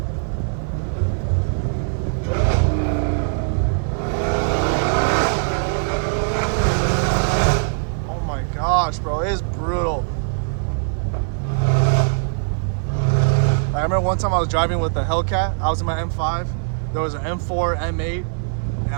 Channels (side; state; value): left; silent; 62 dB below the other